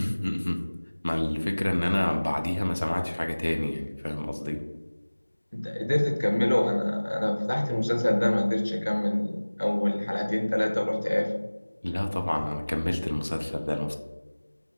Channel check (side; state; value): both; inverted; correlation -1.00